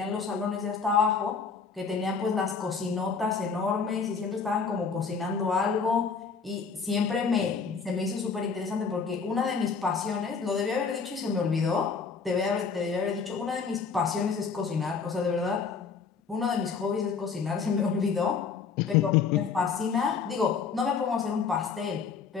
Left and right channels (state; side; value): quieter; right; 5.5 dB